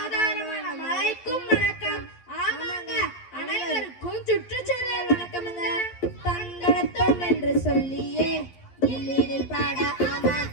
மழைக்கும் வணக்கம். ஆமாங்க, அனைவருக்கும் சுற்றுச்சூழல் வணக்கமுங்க. தந்தனத்தோம் என்று சொல்லியே இல்லினில் பாட ஆமா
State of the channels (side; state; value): right; late; 11 ms